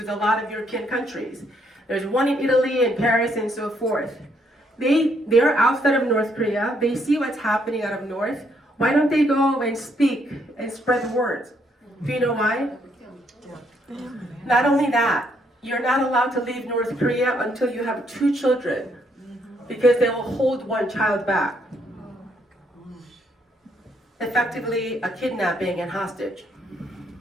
a lot of European countries. There's one in Italy and Paris and so forth. They're outside of North Korea. They see what's happening out of North. Why don't they go and speak and spread the word? Do you know why? Not only that, you're not allowed to leave North Korea until you have 2 children because they will hold one child back. Effectively a kidnapping and hostage.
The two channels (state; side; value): normal; both; correlation 0.72